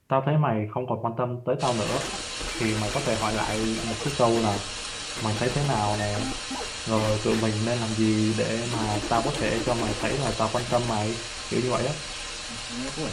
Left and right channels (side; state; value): both; identical; correlation 1.00